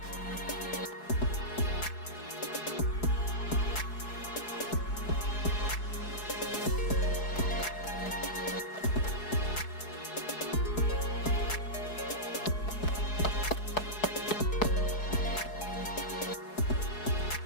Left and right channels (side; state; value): right; late; 4.7 ms